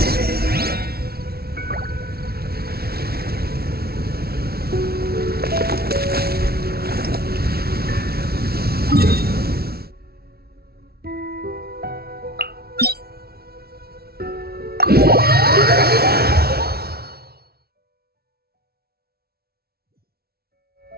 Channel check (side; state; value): left; late; 0.45 ms